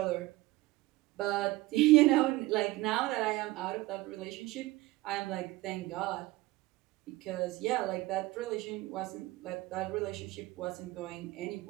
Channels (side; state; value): left; quieter; 19.2 dB